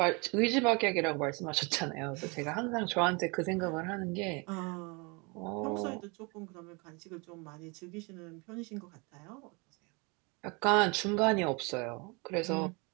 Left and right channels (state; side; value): quieter; left; 29.6 dB